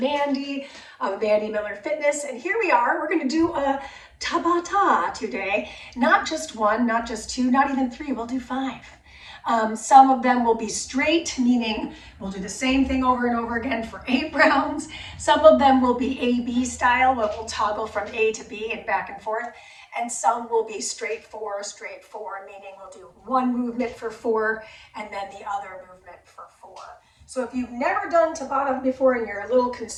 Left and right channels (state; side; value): identical; both; correlation 1.00